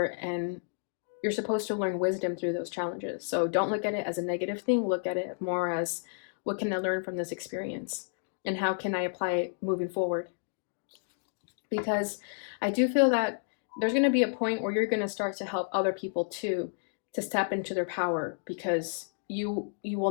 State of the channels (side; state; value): right; silent; digital silence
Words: and you're supposed to learn wisdom through those challenges. So don't look at it as a negative thing. Look at it more as, what can I learn from this experience? And how can I apply it moving forward? Because I do feel that there's going to be a point where you're going to start to help other people too, to step into their power, because you